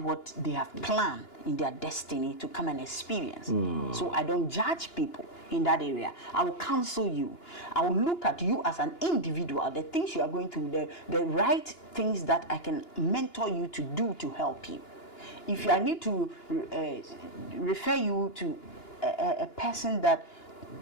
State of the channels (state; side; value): late; right; 2.9 ms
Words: they have planned in their destiny to come and experience. So I don't judge people in that area. I will counsel you. I will look at you as an individual, the things you are going through, the right things that I can mentor you to do to help you. If I need to refer you to a person that